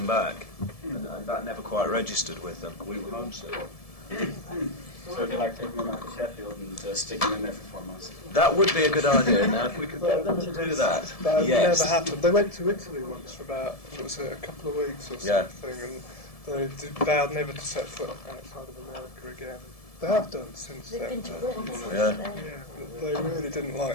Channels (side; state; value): right; late; 1.7 ms